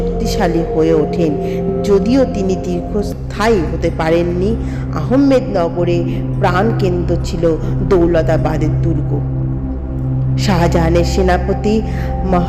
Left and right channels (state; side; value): identical; both; correlation 1.00